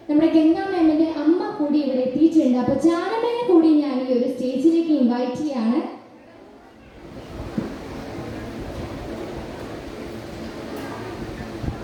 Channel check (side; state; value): both; identical; correlation 1.00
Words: നമ്മുടെ ഗംഗാ മാമിന്റെ അമ്മ കൂടി ഇവിടെ എത്തിയിട്ടുണ്ട്. അപ്പോൾ ജാനമ്മയെ കൂടി ഞാൻ ഈ ഒരു സ്റ്റേജിലേക്ക് ഇൻവൈറ്റ് ചെയ്യാണ്.